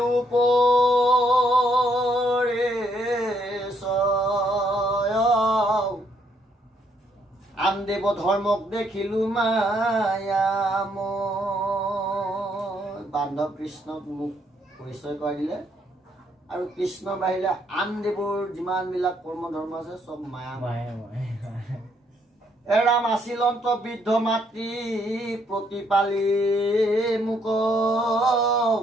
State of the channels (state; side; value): normal; both; correlation 0.71